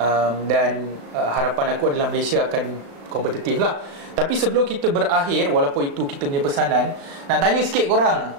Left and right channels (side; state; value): left; late; 36 ms